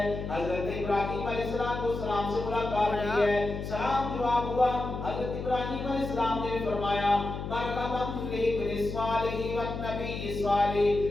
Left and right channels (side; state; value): left; noise; hum, 6 dB below the sound